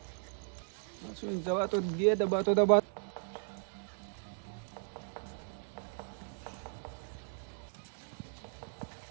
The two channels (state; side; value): silent; left; digital silence